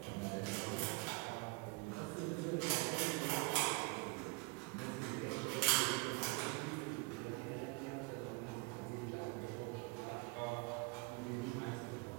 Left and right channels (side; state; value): left; quieter; 28.3 dB